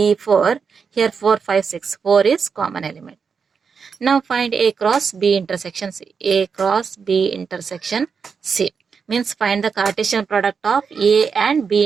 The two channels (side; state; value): left; quieter; 5.9 dB